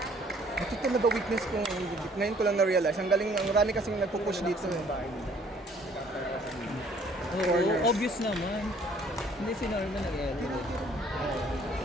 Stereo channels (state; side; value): normal; both; correlation 0.59